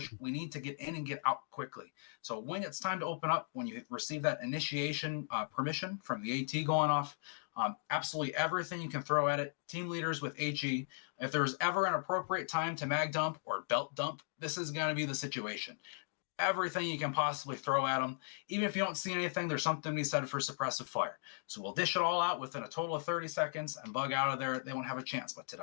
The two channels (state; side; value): silent; right; digital silence